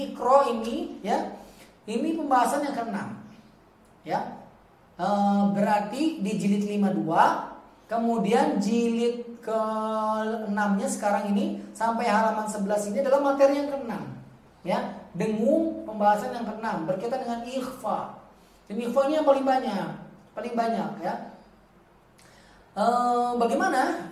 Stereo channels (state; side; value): identical; both; correlation 1.00